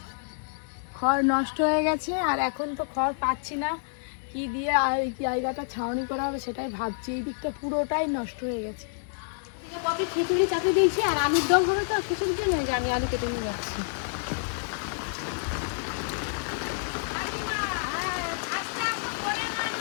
খড় নষ্ট হয়ে গেছে। আর এখন তো খড় পাচ্ছি না, কি দিয়ে আর এই জায়গাটা ছাউনি করা হবে সেটাই ভাবছি। এই দিকটা পুরোটাই নষ্ট হয়ে গেছে। কপি খিচুড়ি চাপি দিয়েছি আর আলুর দম হবে তো খিচুড়ির জন্য, যে আমি আলু কেটে নিয়ে যাচ্ছি।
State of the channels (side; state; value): right; silent; digital silence